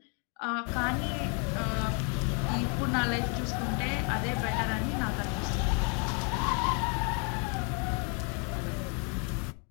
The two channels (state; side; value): quieter; right; 36.7 dB